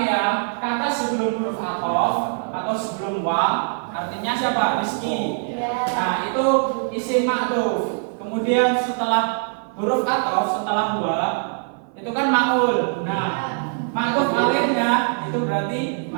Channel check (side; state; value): left; silent; 55 dB below the other